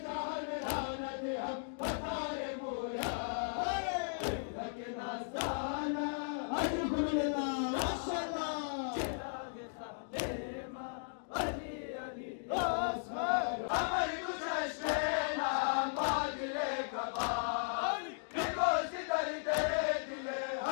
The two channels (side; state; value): right; silent; digital silence